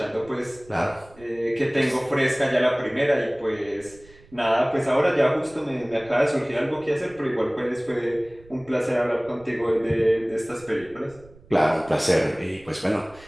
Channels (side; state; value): right; noise; rumble, 25 dB below the sound